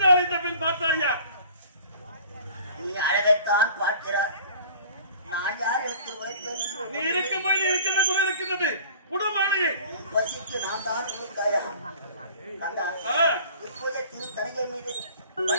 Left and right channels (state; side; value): inverted; both; correlation -0.46